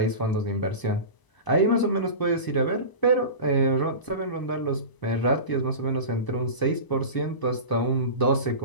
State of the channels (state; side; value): late; right; 1.0 ms